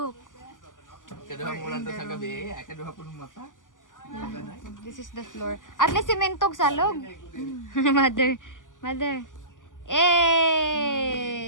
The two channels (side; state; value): right; late; 0.88 ms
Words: Kaduha mulan to sa gabi, ay kaduha po ng mata. This is the floor. At least simentog salog. Mother.